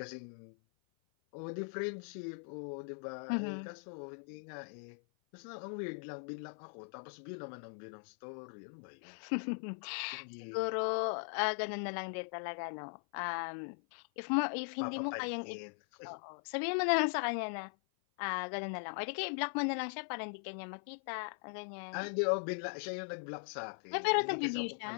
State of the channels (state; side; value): silent; right; 51 dB below the other